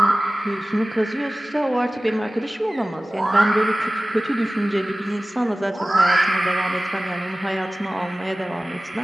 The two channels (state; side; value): normal; both; correlation 0.97